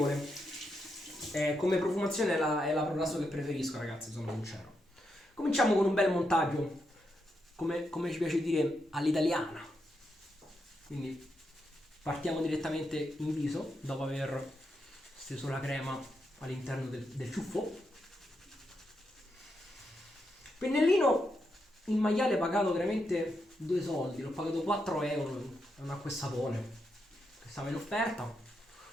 Come profumazione è la Proraso che preferisco, ragazzi, sono sincero. Cominciamo con un bel montaggio, come ci piace dire, all'italiana. Quindi partiamo direttamente in viso dopo aver steso la crema all'interno del ciuffo. Pennellino in maiale pagato veramente 2 soldi, l'ho pagato 4 euro, è un acqua e sapone che stava in offerta.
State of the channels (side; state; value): both; normal; correlation 0.83